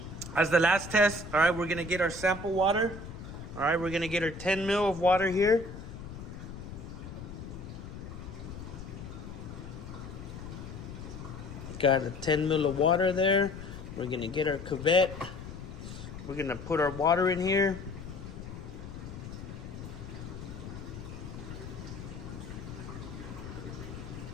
test. All right, we're gonna get our sample water. All right, we're gonna get our 10 ml of water here. Got a 10 ml of water there. We're gonna get our cuvette. We're gonna put our water in here.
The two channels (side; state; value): left; noise; rumble, 10 dB below the sound